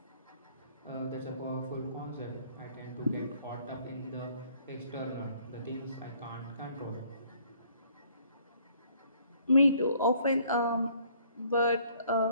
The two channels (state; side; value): inverted; both; correlation -0.61